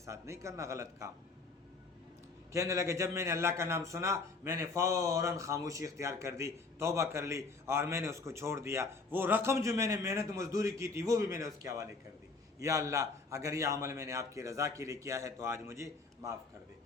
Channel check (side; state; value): right; quieter; 4.0 dB